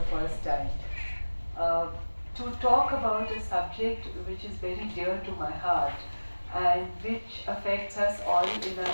first time. Uh, to talk about a subject which is very dear to my heart and which affects us all in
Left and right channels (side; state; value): both; inverted; correlation -1.00